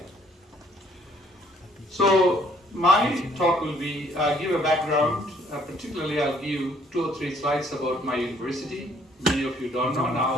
So my talk will be give a background. Particularly, I'll give 2 or 3 slides about my university. Many of you don't know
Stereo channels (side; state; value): both; normal; correlation 0.63